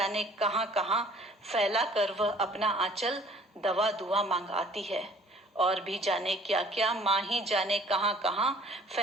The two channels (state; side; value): normal; both; correlation 0.54